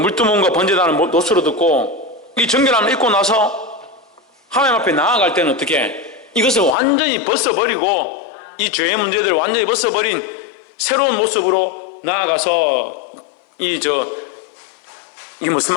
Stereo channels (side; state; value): right; drops out; at 6.8 s